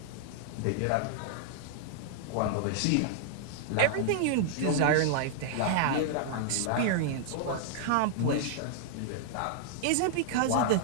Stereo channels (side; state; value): both; different; correlation -0.01